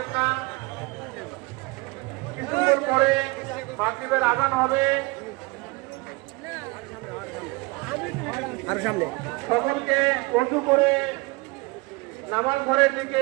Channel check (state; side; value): quieter; left; 25.7 dB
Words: না। কিছুক্ষণ পরে মাগরিবের আযান হবে। সকলকে ওযু করে নামাজ ঘরের